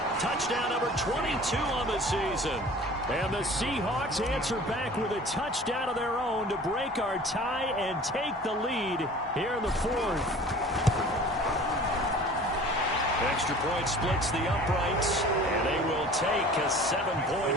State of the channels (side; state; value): both; normal; correlation 0.44